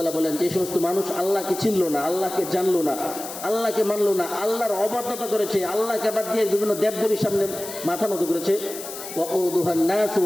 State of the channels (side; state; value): left; noise; hiss, 10 dB below the sound